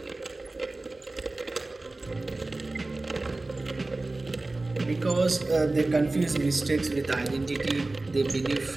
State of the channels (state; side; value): quieter; left; 3.1 dB